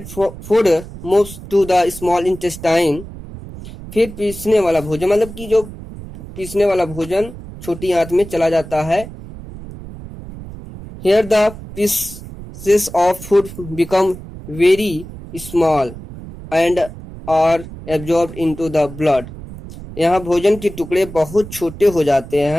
food moves to the small intestine फिर पीसने वाला भोजन, मतलब कि जो पीसने वाला भोजन छोटी आंत में चला जाता है। Here the pieces of food become very small and are absorbed into the blood. यहाँ भोजन के टुकड़े बहुत छोटे हो जाते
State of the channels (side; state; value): right; noise; rumble, 14 dB below the sound